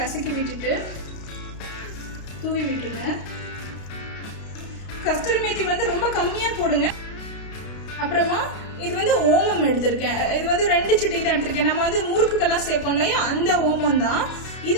விட்டுட்டு தூவி விட்டுருங்க. கஸ்தூரி மேத்தி வந்து ரொம்ப கம்மியா போடுங்க. அப்புறமா இது வந்து ஓமம் எடுத்திருக்கேன். இது வந்து 2 சிட்டி தான் எடுத்திருக்கேன். நம்ம வந்து முறுக்குக்கெல்லாம் சேர்ப்போம் இல்லையா, அந்த ஓமம் தான்.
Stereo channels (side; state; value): right; late; 32 ms